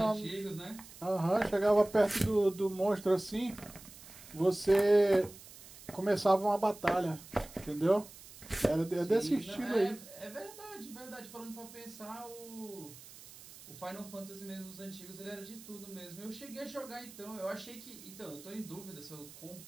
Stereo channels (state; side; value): noise; right; hiss, 18 dB below the sound